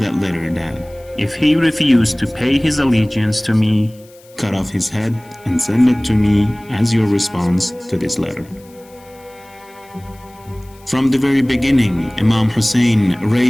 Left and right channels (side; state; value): left; noise; hiss, 27 dB below the sound